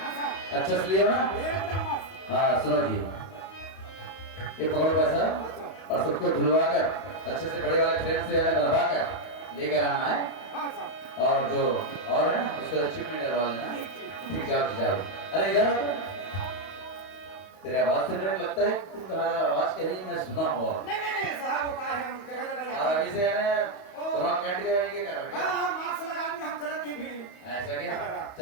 अच्छा से लियो ना एकदम मस्त हाँ सुनो जी ये पकड़ो पैसा और सबको धुलवा कर अच्छे से बड़े वाले फ्रेम से बनवा कर लेकर आना है हाँ साहब और जो और है ना उसको चिप में डलवा लेना ठीक जाओ जाओ अरे इधर आओ। तेरे आवाज से मुझे लगता है तुम्हारा आवाज कहीं मैं सुना हुआ नहीं साहब वो कहा है हम जगह जगह और जाते अभी से है कोरोना कैंट के ये कर रहे हाँ हाँ मास्क लगा के हम चलत नहीं भीड़ में ऐसा क्या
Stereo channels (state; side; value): late; right; 31 ms